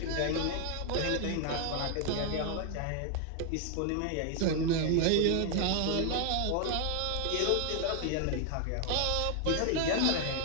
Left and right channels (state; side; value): different; both; correlation 0.00